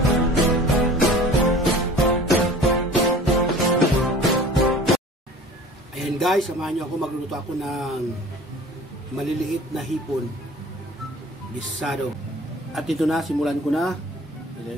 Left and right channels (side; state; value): both; normal; correlation 0.44